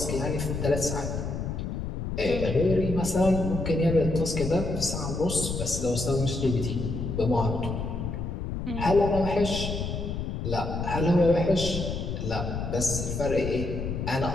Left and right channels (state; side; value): noise; left; rumble, 4 dB below the sound